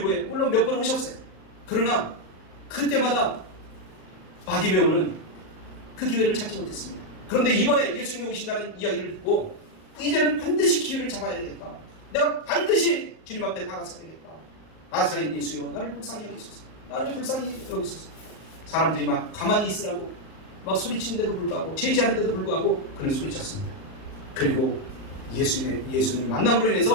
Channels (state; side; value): late; right; 38 ms